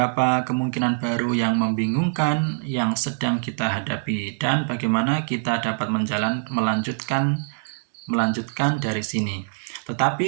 kemungkinan baru yang membingungkan yang sedang kita hadapi dan bagaimana kita dapat melanjutkan dari sini.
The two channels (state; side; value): silent; left; digital silence